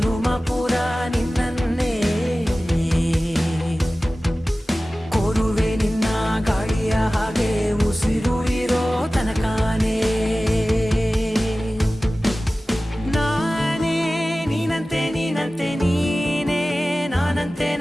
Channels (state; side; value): normal; both; correlation 0.96